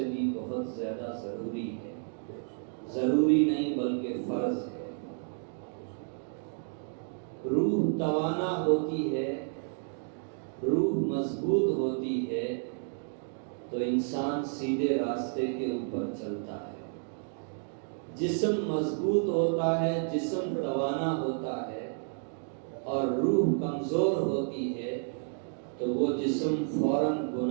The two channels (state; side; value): silent; left; 57 dB below the other